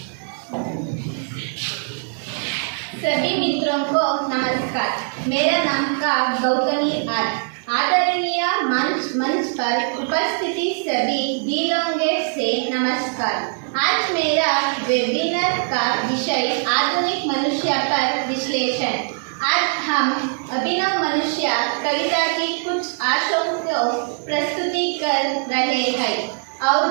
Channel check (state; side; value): silent; left; 64 dB below the other